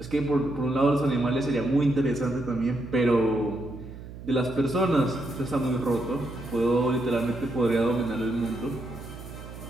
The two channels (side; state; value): right; noise; hum, 13 dB below the sound